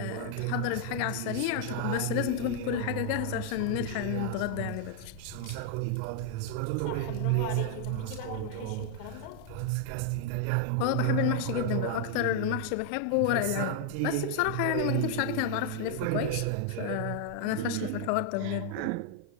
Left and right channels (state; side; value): different; both; correlation 0.00